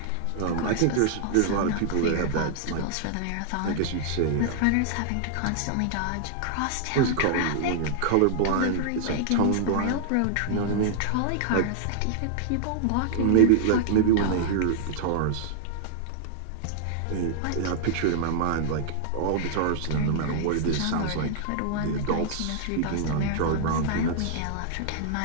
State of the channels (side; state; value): both; different; correlation -0.01